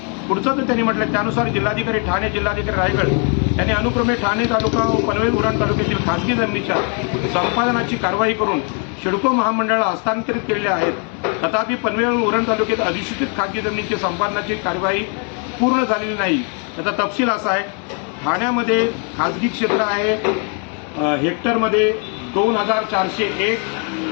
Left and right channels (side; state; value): right; quieter; 39.5 dB